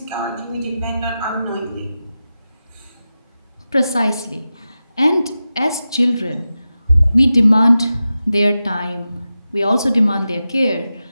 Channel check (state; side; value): inverted; both; correlation -0.92